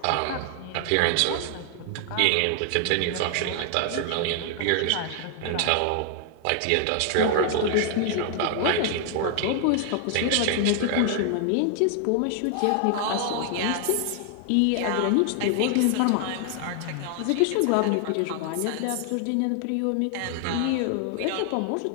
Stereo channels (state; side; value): different; both; correlation 0.00